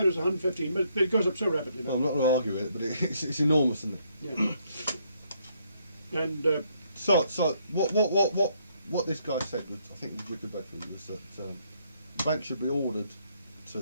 it was 115, but it goes up so rapidly now. Well, I'm not going to argue with it, but it's enormous, isn't it? Yeah. And so what this guy said, was, I think was Richard Bedford, was that the bank should be ordered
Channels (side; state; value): both; inverted; correlation -0.71